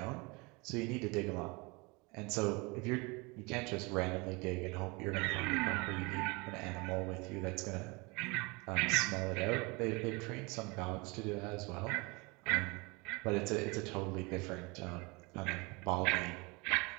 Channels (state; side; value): quieter; left; 27.1 dB